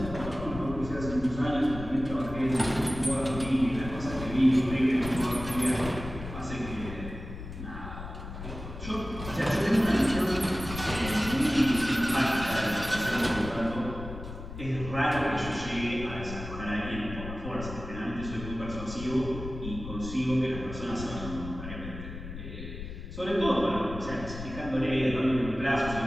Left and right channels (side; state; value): left; noise; rumble, 10 dB below the sound